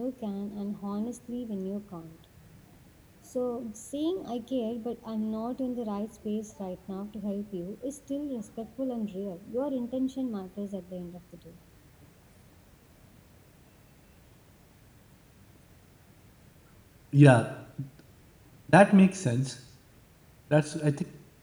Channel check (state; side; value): identical; both; correlation 1.00